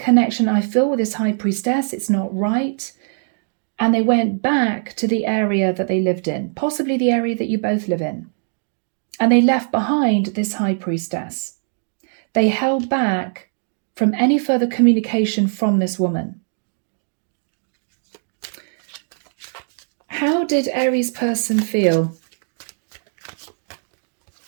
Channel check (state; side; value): silent; left; digital silence